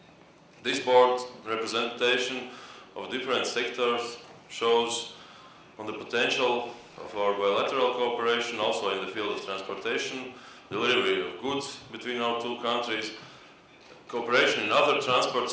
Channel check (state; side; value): identical; both; correlation 1.00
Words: This board representation of different sectors shows on the potential of our bilateral cooperation also in the field of transportation, delivery of goods between our two countries, cooperation in other transport